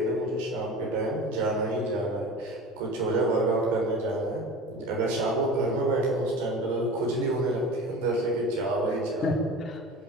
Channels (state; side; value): normal; both; correlation 0.35